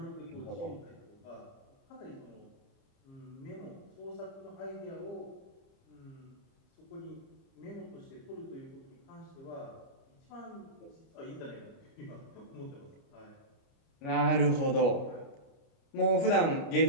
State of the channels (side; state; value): right; late; 29 ms